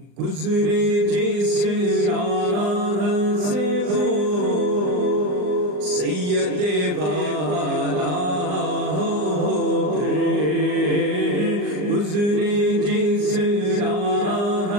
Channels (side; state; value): left; late; 39 ms